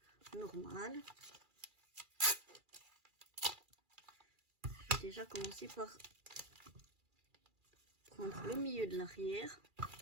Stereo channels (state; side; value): late; left; 2.4 ms